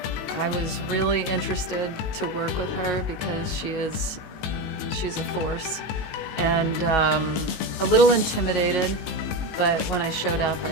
was really interested to work with her because she's a force, and a little intimidated. But when I showed up, I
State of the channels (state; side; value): late; right; 19 ms